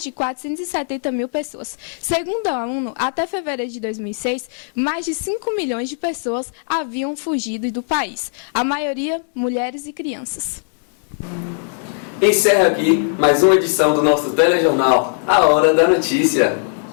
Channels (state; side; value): silent; right; digital silence